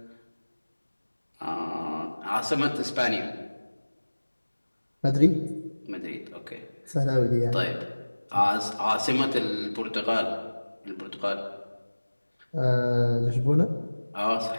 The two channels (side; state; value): both; inverted; correlation -1.00